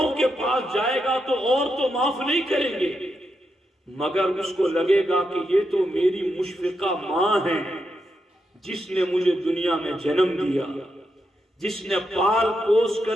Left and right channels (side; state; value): both; normal; correlation 0.84